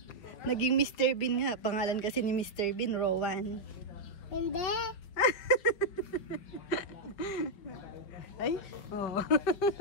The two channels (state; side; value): late; right; 5.5 ms